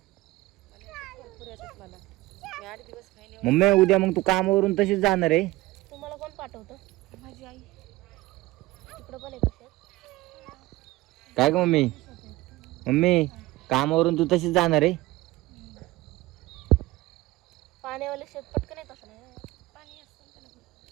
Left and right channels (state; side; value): quieter; left; 19.0 dB